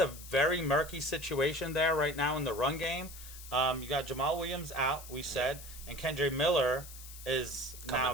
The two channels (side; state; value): left; noise; hiss, 14 dB below the sound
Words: very murky situation there right now in the run game. You got Jamal Williams out, we said, and Kendre Miller is now